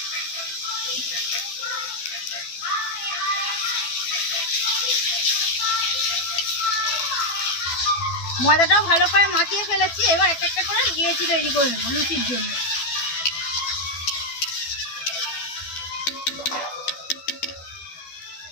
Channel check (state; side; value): late; right; 12 ms